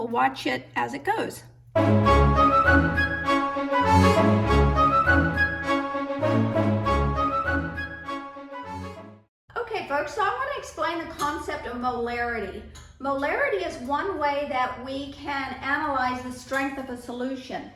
watch it as it goes. Okay folks, so I want to explain the concept of molarity. Molarity is one way that we can analyze the strength of a solution.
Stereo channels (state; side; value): identical; both; correlation 1.00